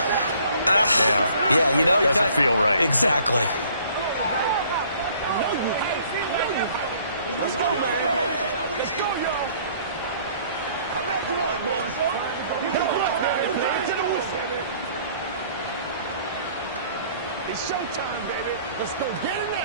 yeah, you know, doesn't feel right. Exactly. It's showtime, baby. Let's go get it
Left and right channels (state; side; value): inverted; both; correlation -0.57